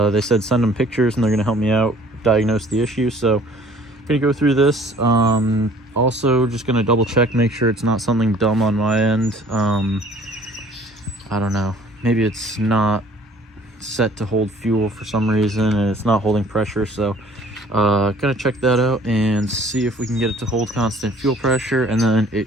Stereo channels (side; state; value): both; normal; correlation 0.54